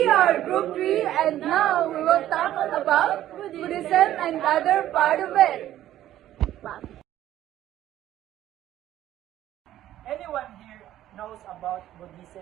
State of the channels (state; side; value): quieter; left; 12.9 dB